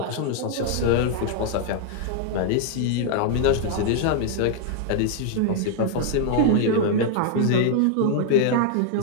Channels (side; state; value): both; different; correlation -0.01